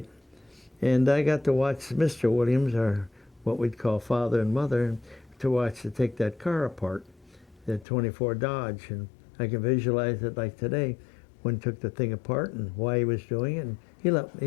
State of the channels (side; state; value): right; drops out; at 7.9 s